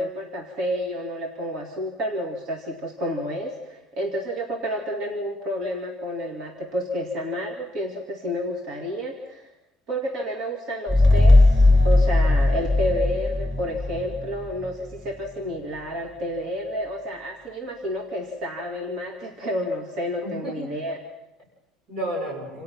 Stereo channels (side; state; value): both; normal; correlation 0.81